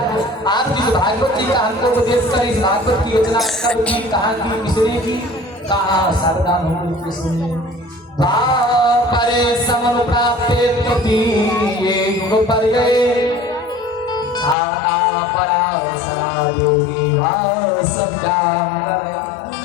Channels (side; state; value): right; drops out; at 14.6 s